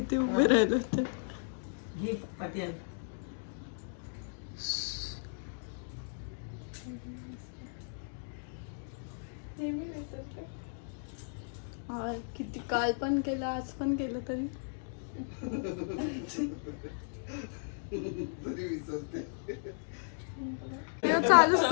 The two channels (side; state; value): right; silent; digital silence